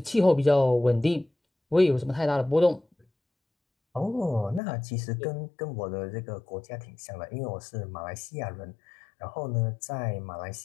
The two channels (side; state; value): right; drops out; at 4.6 s